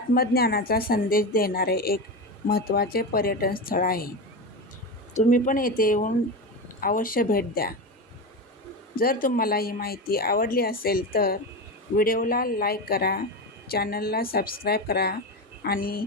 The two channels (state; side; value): normal; both; correlation 0.19